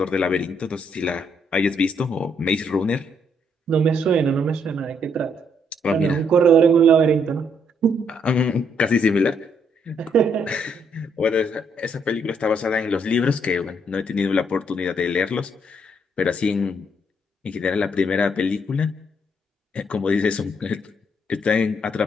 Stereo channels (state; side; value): normal; both; correlation 0.72